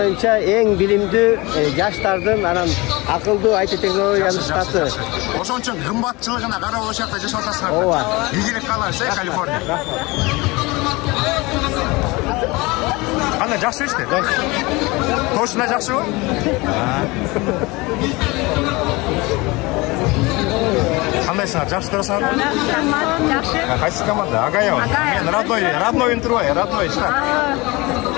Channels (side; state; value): right; quieter; 23.6 dB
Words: эң билимдүү жаштардын анан акылдуу IT технологиянын штаты. Ошон үчүн кымбатчылыгына карап ошол жакта жашап атасыңар. Ооба. Ийгилик каалайбыз, Калифорния. Кандай, жакшы иште? Точно жакшыбы? Кандайсыңар, жакшы турасыңарбы? Жакшы. Кайсы команда? Агаева. Мен родной интервью, родной штат.